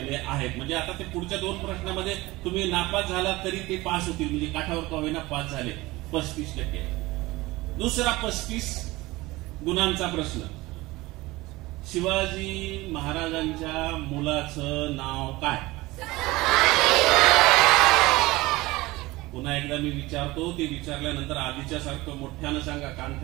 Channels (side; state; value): left; quieter; 20.3 dB